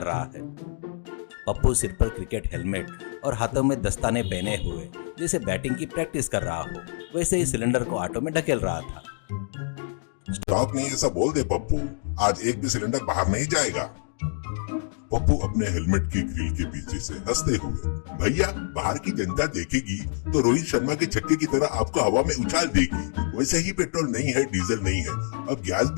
रहा है। पप्पू सिर पर क्रिकेट हेलमेट और हाथों में दस्ताने पहने हुए जैसे बैटिंग की प्रैक्टिस कर रहा हो, वैसे ही सिलेंडर को ऑटो में ढकेल रहा था। स्टॉक नहीं ऐसा बोल दे पप्पू, आज एक भी सिलेंडर बाहर नहीं जाएगा। पप्पू अपने हेलमेट के ग्रिल के पीछे से हंसते हुए, भैया बाहर की जनता देखेगी तो रोहित शर्मा के छक्के की तरह आपको हवा में उछाल देगी। वैसे ही पेट्रोल नहीं है, डीजल नहीं है, अब गैस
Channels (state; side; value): silent; right; digital silence